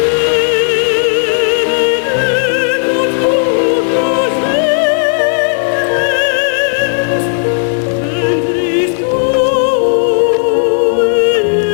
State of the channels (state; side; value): silent; right; digital silence